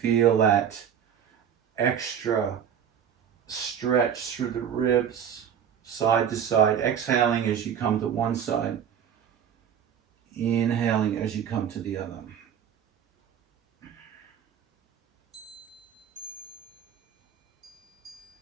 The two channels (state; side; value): quieter; left; 8.5 dB